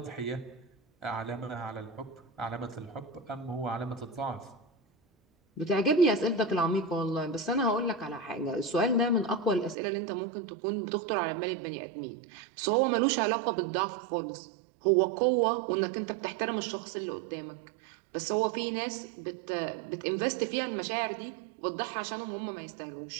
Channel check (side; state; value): left; drops out; at 9.8 s